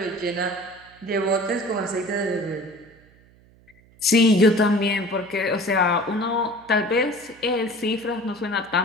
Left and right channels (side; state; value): right; noise; hum, 28 dB below the sound